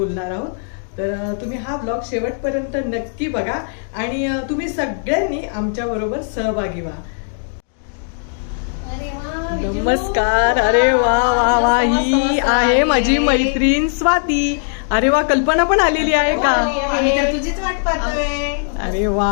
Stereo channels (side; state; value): right; silent; digital silence